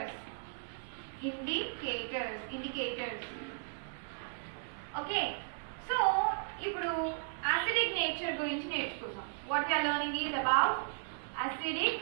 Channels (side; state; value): left; silent; digital silence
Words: ఓకే. సో ఇప్పుడు అసిడిక్ నేచర్ గురించి నేర్చుకుందాం. What we are learning is about